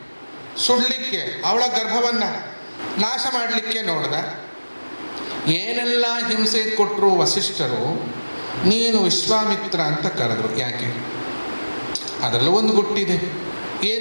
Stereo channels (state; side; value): inverted; both; correlation -1.00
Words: ಸುಡಲಿಕ್ಕೆ, ಅವಳ ಗರ್ಭವನ್ನು ನಾಶ ಮಾಡಲಿಕ್ಕೆ ನೋಡ್ದ. ಏನೆಲ್ಲ ಹಿಂಸೆ ಕೊಟ್ಟರು ವಸಿಷ್ಠರು, ನೀನು ವಿಶ್ವಾಮಿತ್ರ ಅಂತ ಕರೆದ್ರು. ಯಾಕೆ? ಅದರಲ್ಲೂ ಒಂದು ಗುಟ್ಟಿದೆ.